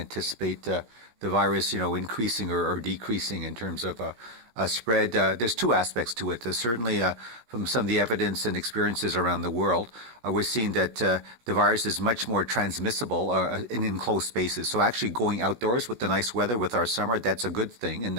the virus, increasing or decreasing in terms of spread. There's two aspects to it. Certainly, from some of the evidence and experiences around the world, we're seeing that the virus is much more transmissible in enclosed spaces. So actually going outdoors with the nice weather with our summer, that's a good thing. And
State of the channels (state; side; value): late; left; 17 ms